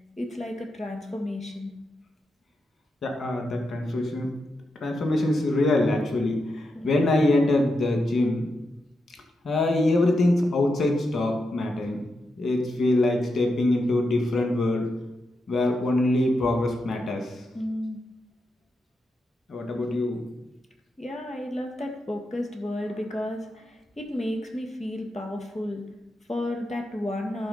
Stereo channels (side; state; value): both; normal; correlation 0.86